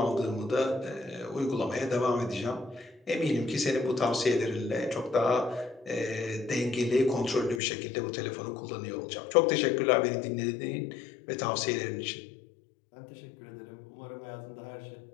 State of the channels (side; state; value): right; drops out; at 7.6 s